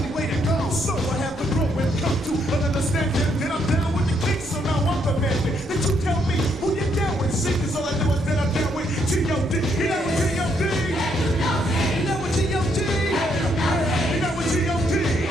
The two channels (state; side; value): normal; both; correlation 0.73